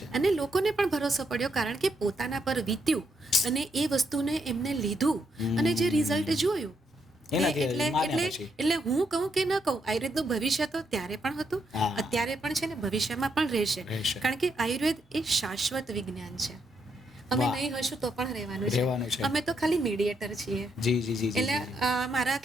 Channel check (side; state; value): both; normal; correlation 0.78